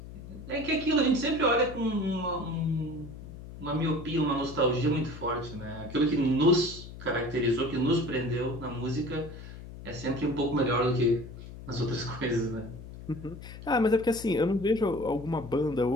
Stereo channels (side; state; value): left; noise; hum, 13 dB below the sound